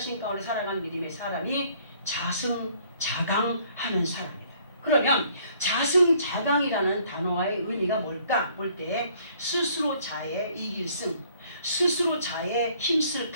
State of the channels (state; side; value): inverted; both; correlation -0.61